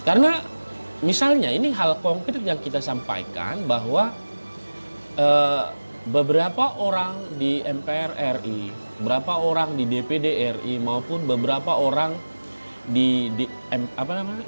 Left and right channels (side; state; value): both; inverted; correlation -1.00